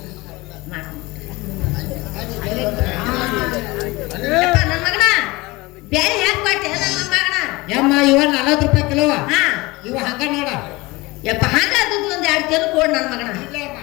ಯಪ್ಪ ನನ್ನ ಮಗನ ಬೇಳೆ ಹೆಂಗ್ ಪಾಟಿ ನನ್ನ ಮೊಮ್ಮಗನ? ಯಮ್ಮ ಇವ 40 ರೂಪಾಯಿ ಕಿಲೋ ಹಾ ಇವ ಹಂಗ ನೋಡ ಯಪ್ಪ ಹಂಗ ದುಡ್ಡು ಒಂದ್ 2 ಕಿಲೋ ಕೊಡ್ ನನ್ನ ಮಗನ. ಇಲ್ಲ ಅಮ್ಮ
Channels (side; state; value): right; quieter; 22.4 dB